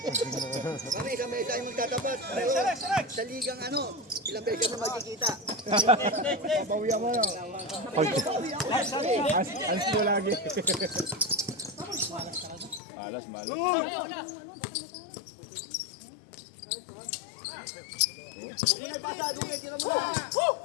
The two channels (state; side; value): drops out; right; at 12.8 s